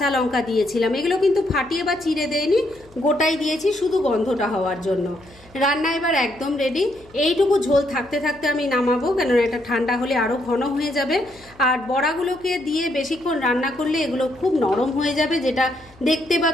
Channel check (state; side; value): noise; left; hum, 26 dB below the sound